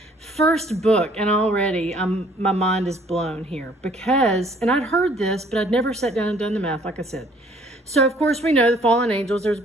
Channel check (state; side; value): normal; both; correlation 0.59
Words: first book, and already my mind is blown here and I'd heard this, but I'd never sat down and done the math, like I said. So of course we know the fallen angels, there's